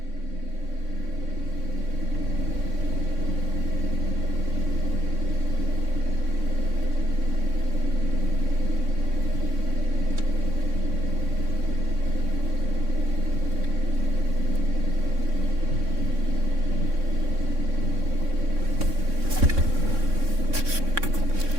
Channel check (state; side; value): late; left; 3.6 ms